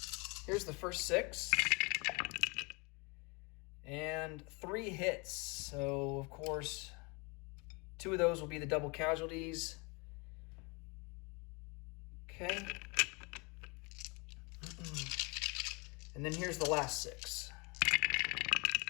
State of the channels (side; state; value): right; quieter; 29.7 dB